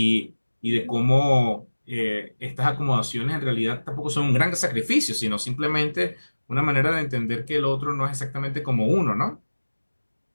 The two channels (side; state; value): both; inverted; correlation -1.00